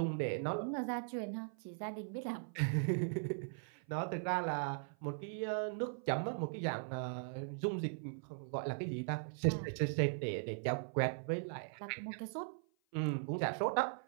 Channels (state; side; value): silent; left; 51 dB below the other